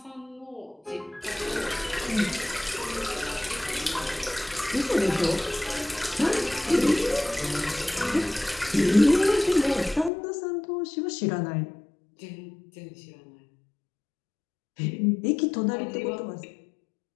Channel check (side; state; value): right; drops out; at 10.1 s